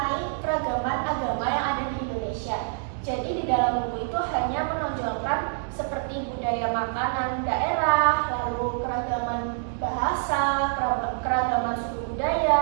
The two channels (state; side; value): silent; left; digital silence